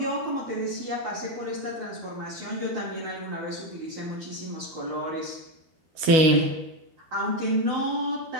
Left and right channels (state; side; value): late; left; 12 ms